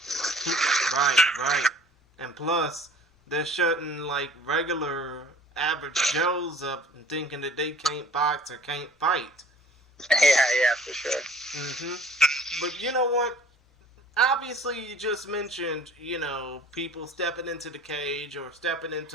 Right. And plus, they're shutting, like, regular average Joes up and thinking that they can't box or can't fight. Yeah, for sure. But you know what? Obviously, you just mentioned, you know, people stepping into the cage or stepping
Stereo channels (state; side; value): normal; both; correlation 0.48